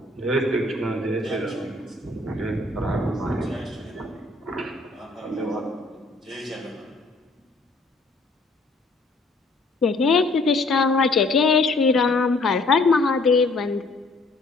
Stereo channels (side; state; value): right; quieter; 3.2 dB